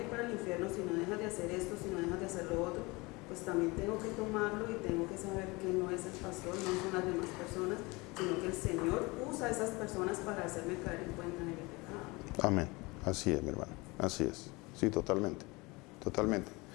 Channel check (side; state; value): right; quieter; 24.6 dB